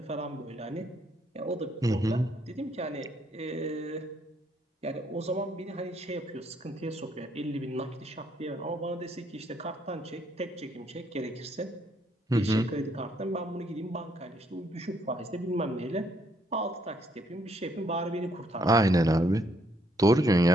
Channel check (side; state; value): both; normal; correlation 0.70